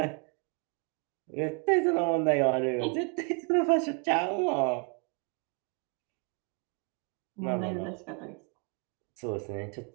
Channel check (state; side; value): quieter; left; 36.5 dB